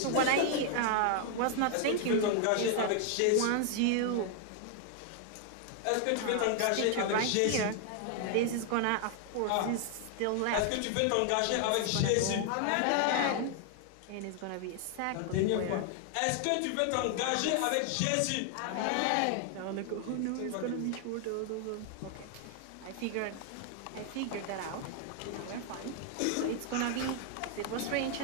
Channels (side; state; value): both; different; correlation 0.00